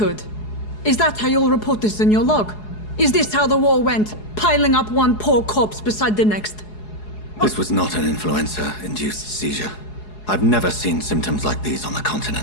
Is that how you'll report this in your log? Is this how the war went? Piling up one poor corpse beside the next? This was not an influenza-induced seizure. I've never seen symptoms like these on the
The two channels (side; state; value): right; late; 4.8 ms